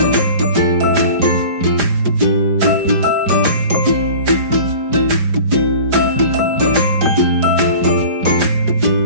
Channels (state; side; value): late; left; 5.0 ms